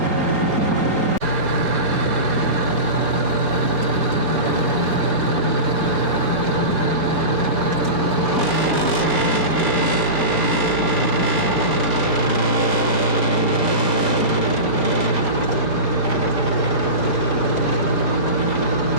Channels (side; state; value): left; late; 4.3 ms